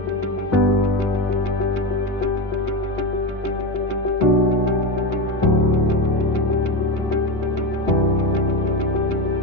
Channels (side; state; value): both; normal; correlation 0.18